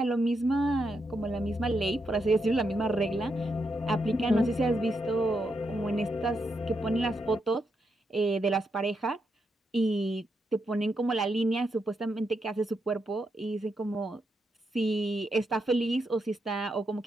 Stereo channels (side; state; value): both; normal; correlation 0.82